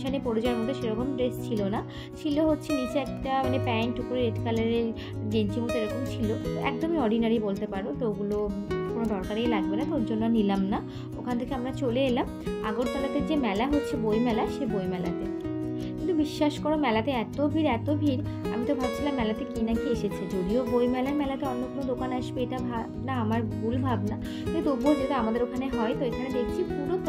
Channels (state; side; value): identical; both; correlation 1.00